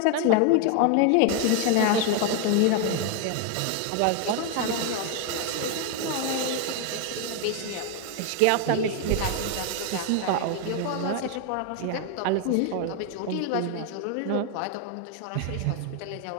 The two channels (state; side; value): different; both; correlation 0.01